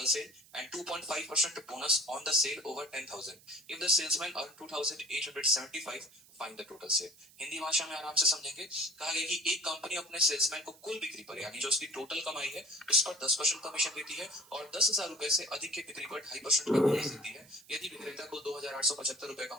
sale and 2.5% bonus on the sale over 10,000 if the salesman earn 2,875, find the total sale. Hindi भाषा में आराम से समझेंगे। कहा गया कि एक कंपनी अपने सेल्समैन को कुल बिक्री पर, यानी जो उसकी टोटल कमाई है उस पर 10% कमीशन देती है, और 10,000 रुपए से अधिक की बिक्री पर 2.5% का बोनस देती है। यदि विक्रेता को 2,875 रुपए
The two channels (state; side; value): noise; right; hiss, 24 dB below the sound